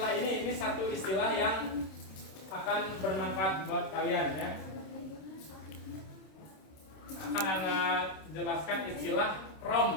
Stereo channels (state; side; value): late; right; 26 ms